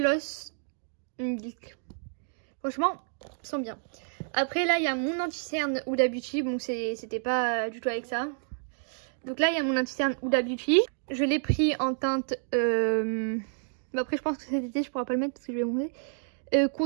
Milk. Franchement, ils sont bien. Après là il y a mon anti-cerne Huda Beauty, bon c'était pas du tout avec ça. Donc là il y a mon anti-cerne Huda Beauty. Je l'ai pris en teinte, après je pense que cet été je pourrais pas le mettre parce que je vais monter.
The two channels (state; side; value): silent; left; digital silence